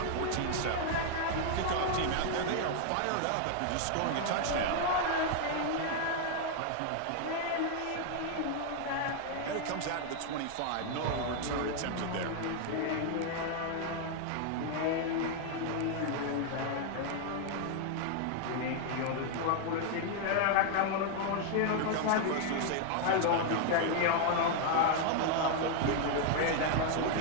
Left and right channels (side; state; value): both; different; correlation 0.00